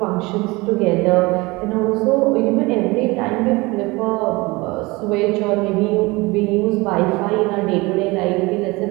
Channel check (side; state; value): left; quieter; 23.3 dB